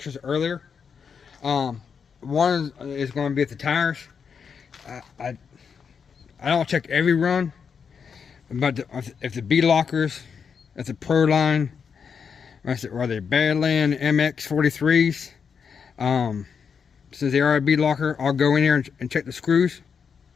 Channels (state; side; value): quieter; right; 6.4 dB